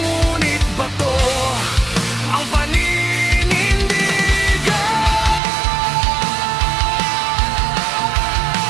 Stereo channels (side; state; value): left; drops out; at 5.4 s